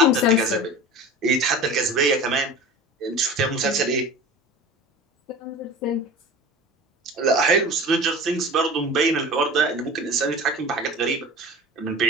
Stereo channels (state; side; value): normal; both; correlation 0.36